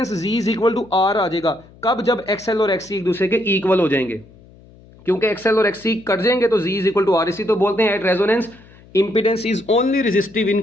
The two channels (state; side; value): noise; left; hum, 25 dB below the sound